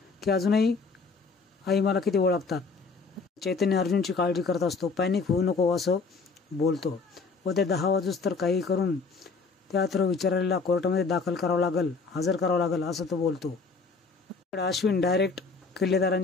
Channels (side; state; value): right; quieter; 4.5 dB